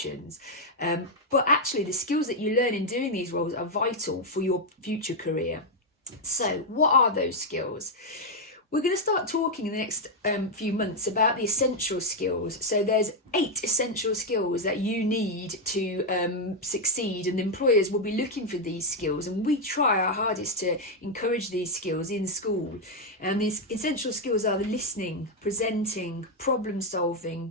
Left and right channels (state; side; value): normal; both; correlation 0.01